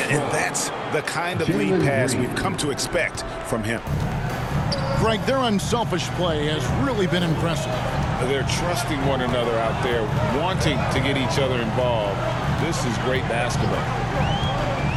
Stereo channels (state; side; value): identical; both; correlation 1.00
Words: And that's the kind of lead pass we've come to expect from him. Greg, their unselfish play has really been impressive. They're trusting one another out there, wanting to get each other involved. This is great basketball.